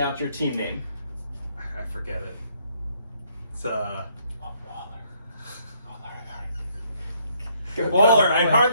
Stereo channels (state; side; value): inverted; both; correlation -0.69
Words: your team name? I forget it. It's Waller. Waller, I